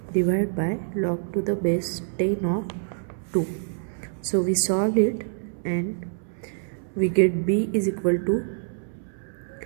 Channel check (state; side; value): silent; left; 61 dB below the other